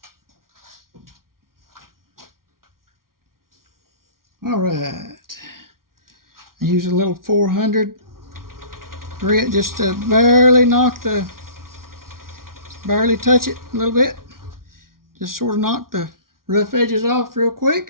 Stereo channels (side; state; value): left; late; 0.92 ms